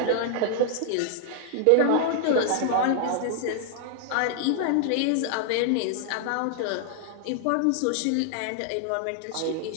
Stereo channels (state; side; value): different; both; correlation 0.00